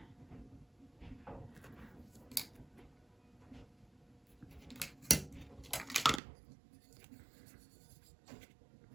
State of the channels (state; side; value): drops out; left; at 6.2 s